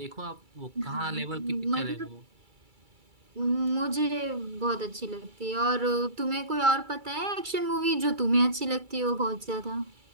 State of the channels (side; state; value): left; late; 2.3 ms